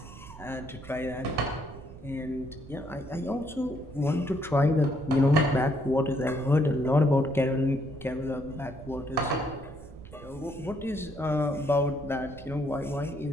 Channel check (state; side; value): noise; right; rumble, 16 dB below the sound